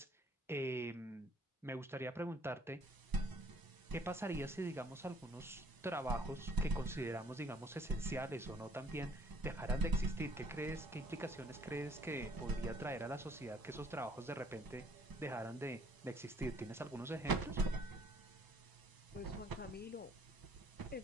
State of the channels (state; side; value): normal; both; correlation 0.60